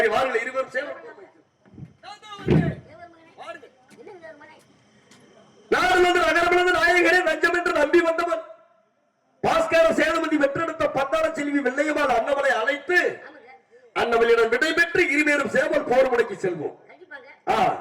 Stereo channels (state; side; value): identical; both; correlation 1.00